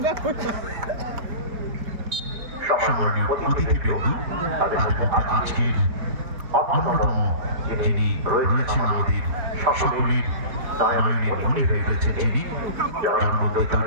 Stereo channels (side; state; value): left; late; 4.1 ms